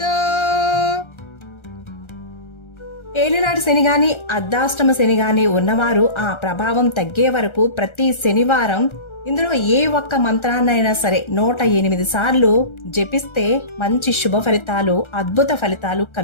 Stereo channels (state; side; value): late; right; 1.3 ms